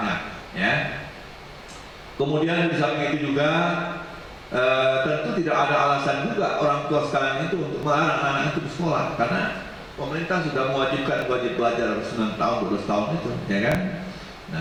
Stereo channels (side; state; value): both; identical; correlation 1.00